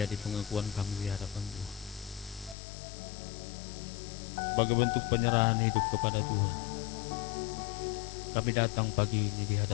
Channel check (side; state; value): right; drops out; at 2.6 s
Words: pengakuan kami di hadapan Tuhan. Sebagai bentuk penyerahan hidup kepada Tuhan, kami datang pagi ini di